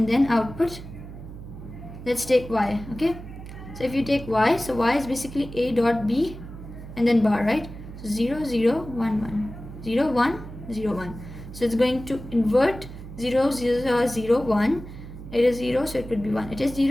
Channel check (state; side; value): noise; right; hum, 13 dB below the sound